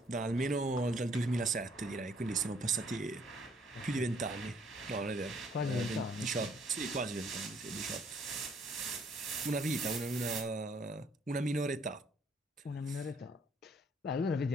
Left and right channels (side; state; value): both; normal; correlation 0.64